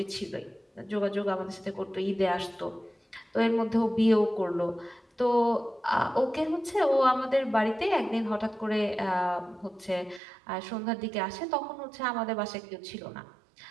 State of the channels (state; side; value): drops out; left; at 10.2 s